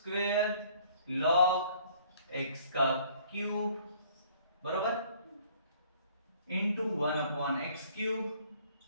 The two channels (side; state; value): both; inverted; correlation -0.58